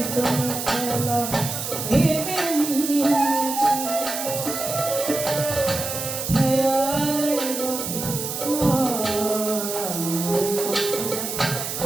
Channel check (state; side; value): noise; right; hiss, 5 dB below the sound